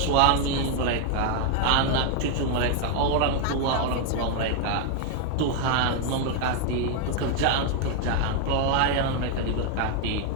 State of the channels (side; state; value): both; different; correlation 0.00